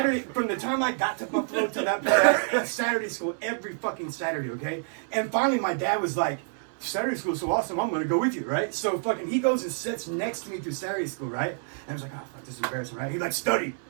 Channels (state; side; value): silent; left; 59 dB below the other